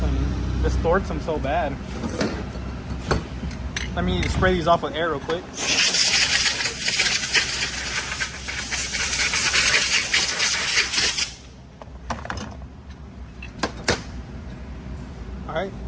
Distorts them so bad. Let me spray these off with air real quick. Alright,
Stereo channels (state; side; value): identical; both; correlation 1.00